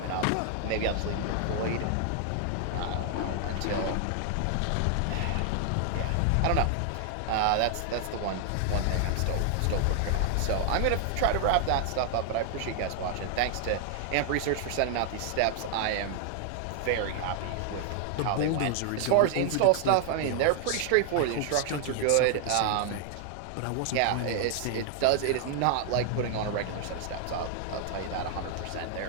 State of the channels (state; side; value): different; both; correlation 0.00